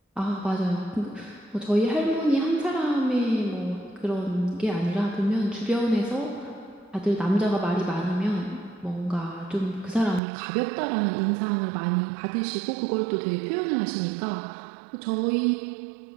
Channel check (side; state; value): left; drops out; at 10.2 s